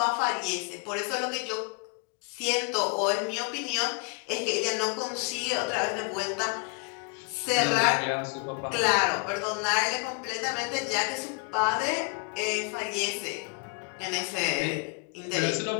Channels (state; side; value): quieter; right; 32.6 dB